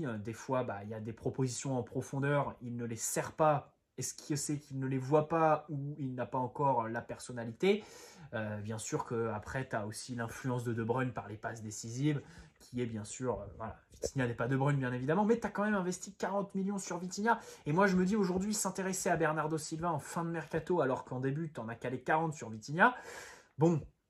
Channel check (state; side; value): identical; both; correlation 1.00